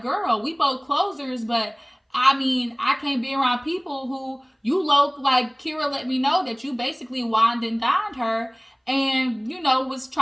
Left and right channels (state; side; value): identical; both; correlation 1.00